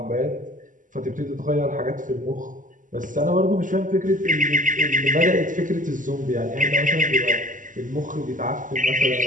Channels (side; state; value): left; late; 0.38 ms